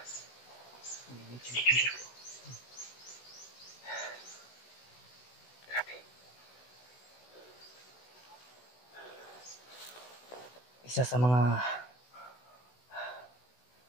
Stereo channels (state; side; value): late; right; 16 ms